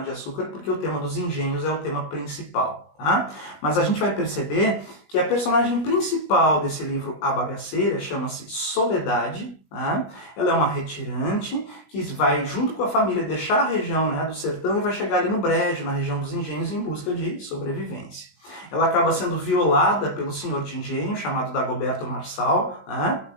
porque o tema dos engenhos é o tema principal, tá? Mas a gente vai perceber que a personagem principal desse livro A Bagaceira chama-se Soledade, tá? Ela é uma retirante que vai, junto com a família, deixar a região, né, do sertão e vai chegar ali no Brejo, na região dos engenhos, em busca de sobrevivência. Ela acaba sendo violada pelo senhor de engenho, chamado Dagoberto Marçal, né?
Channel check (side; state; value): right; late; 19 ms